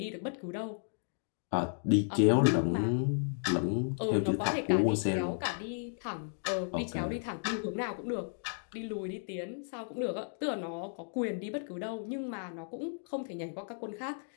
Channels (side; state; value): right; silent; digital silence